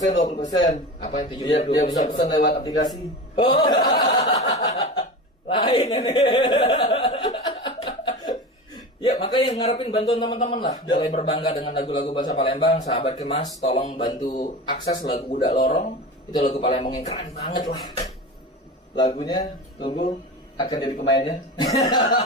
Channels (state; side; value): normal; both; correlation 0.29